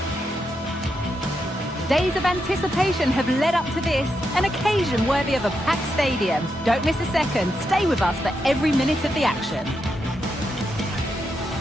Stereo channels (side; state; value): both; normal; correlation 0.84